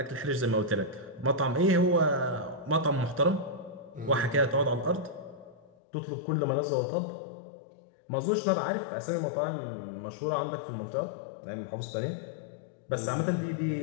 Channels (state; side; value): drops out; right; at 5.7 s